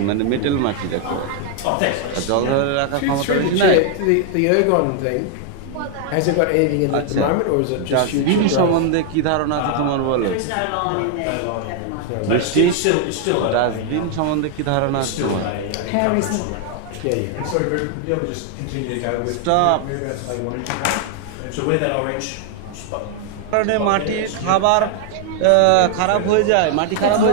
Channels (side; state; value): both; different; correlation 0.00